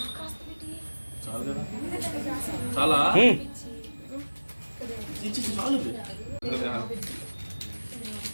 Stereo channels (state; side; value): inverted; both; correlation -1.00